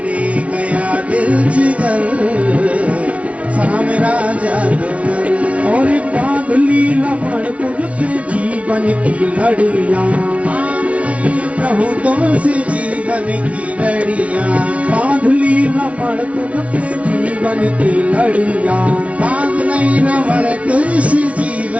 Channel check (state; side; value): late; left; 0.064 ms